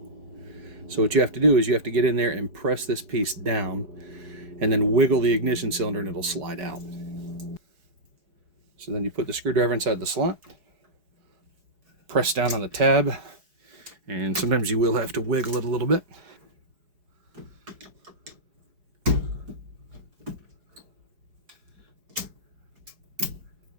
So what you have to do is you have to get in there and press this piece down and then wiggle the ignition cylinder and it'll slide out. So then you put the screwdriver inside the slot, press down on the tab, and sometimes you will have to wiggle it a little bit.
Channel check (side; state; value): left; late; 4.8 ms